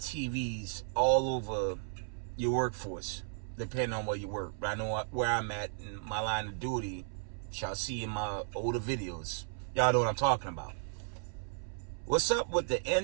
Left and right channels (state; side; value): silent; left; 55 dB below the other